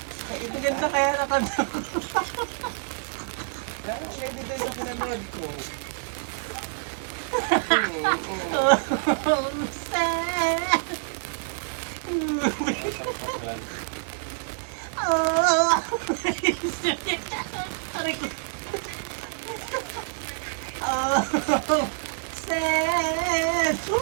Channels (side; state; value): left; silent; digital silence